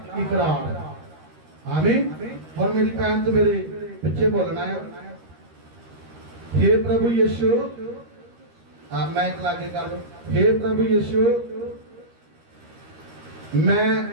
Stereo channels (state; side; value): late; left; 13 ms